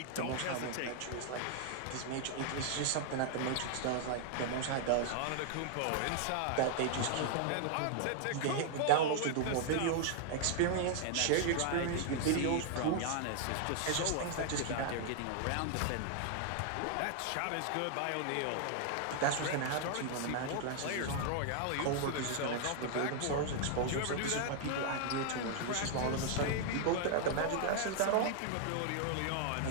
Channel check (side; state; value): both; different; correlation 0.00